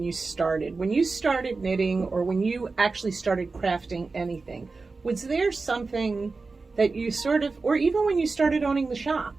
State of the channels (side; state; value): left; quieter; 4.0 dB